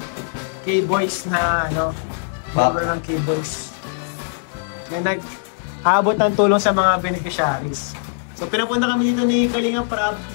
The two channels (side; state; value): right; silent; digital silence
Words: K-boys na member ng K-boys na nag-aabot ng tulong sa mga beneficiaries. So pinapunta kami dito ni Kalingap Rab,